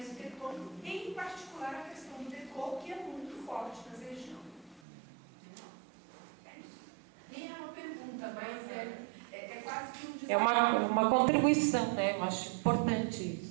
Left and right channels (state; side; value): drops out; left; at 4.8 s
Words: em particular a questão do decor, que é muito forte nessa região. É isso. Nem é uma pergunta, mas é quase que um desafio. É uma contribuição, né? Eu acho importante